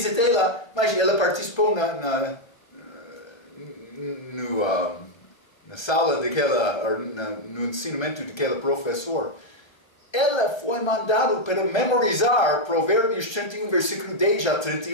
lá, mas ela participou na sala no ensinamento daquele professor. Ela foi mandada para memorizar Provérbios 31, versículo 10 a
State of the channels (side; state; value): right; late; 1.3 ms